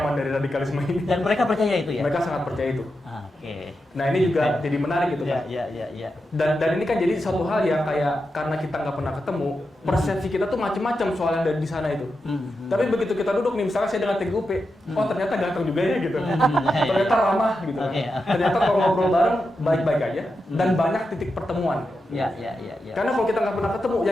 dari radikalisme ini. Dan mereka percaya itu ya? Mereka sangat percaya itu. Oke. Nah ini juga jadi menarik gitu kan. Iya. Dan ini kan jadi satu hal yang kayak karena kita nggak pernah ketemu, persepsi kita tuh macam-macam soal yang dari di sana itu. Tapi begitu kita duduk nih, misalnya saya dengan TGUP, oh ternyata ganteng juga ya gitu. Ternyata ramah gitu. Ternyata kalau ngobrol bareng baik-baik aja dan banyak titik pertemuan. Iya. Karena kalau kita nggak pernah ketemu,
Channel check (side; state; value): both; normal; correlation 0.88